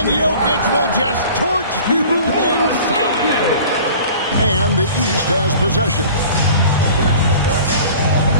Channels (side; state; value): both; inverted; correlation -0.45